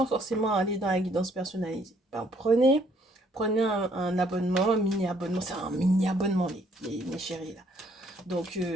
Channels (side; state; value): both; normal; correlation 0.65